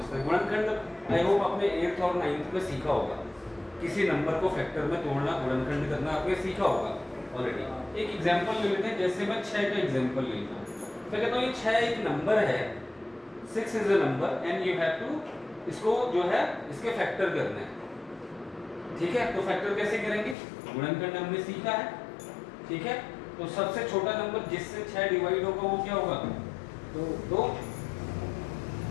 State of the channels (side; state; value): right; drops out; at 20.4 s